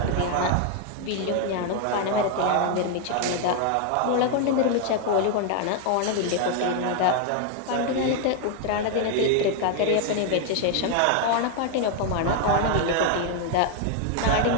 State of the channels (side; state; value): both; different; correlation 0.00